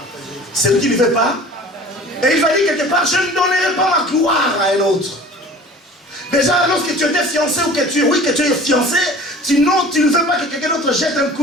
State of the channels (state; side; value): normal; both; correlation 0.43